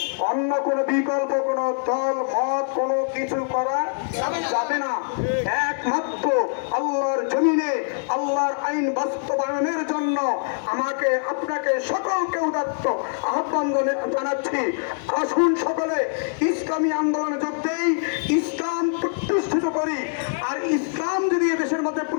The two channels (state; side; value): silent; right; digital silence